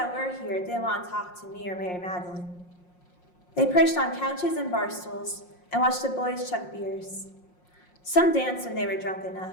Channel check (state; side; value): late; right; 5.6 ms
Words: were here didn't want to talk to me or Mary Magdalene. They perched on couches and bar stools and watched the boys chug beers. Some danced when they were drunk